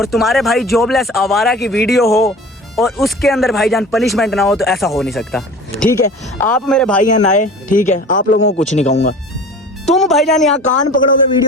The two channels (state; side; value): normal; both; correlation 0.40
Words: तुम्हारे भाई जॉबलेस आवारा की वीडियो हो और उसके अंदर भाईजान पनिशमेंट ना हो तो ऐसा हो नहीं सकता। ठीक है आप मेरे भाई हैं नए, ठीक है आप लोगों को कुछ नहीं कहूंगा। तुम भाईजान यहाँ कान पकड़ोगे